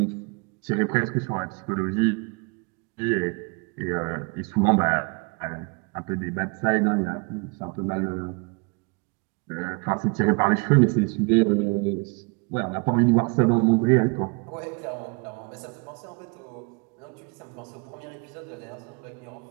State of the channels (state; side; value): quieter; left; 32.7 dB